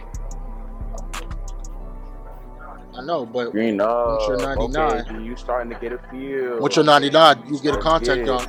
I know, but Green up. once you're 99, okay, you starting to get a feel. once you're 99, you get a contact dunk.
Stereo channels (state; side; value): identical; both; correlation 1.00